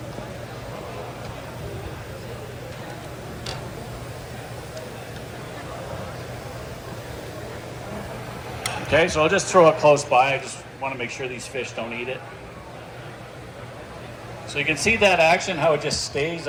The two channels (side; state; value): both; identical; correlation 1.00